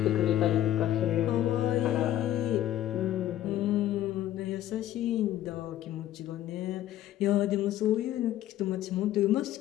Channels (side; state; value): right; quieter; 12.9 dB